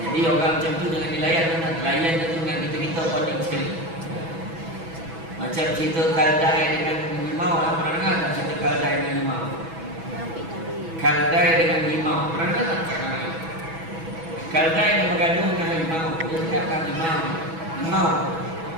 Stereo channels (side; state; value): left; late; 6.1 ms